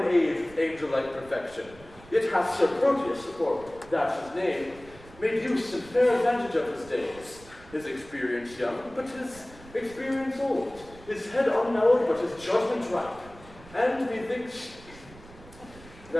age with angel-like perfection, yet hath Sir Proteus, for that's his name, made use and fair advantage of his days, his experience young, but his experience old, his head unknowed, but his judgment ripe, and methinks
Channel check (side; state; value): right; noise; rumble, 21 dB below the sound